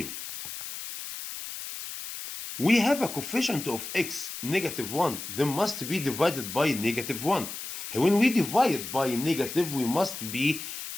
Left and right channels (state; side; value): noise; left; hiss, 8 dB below the sound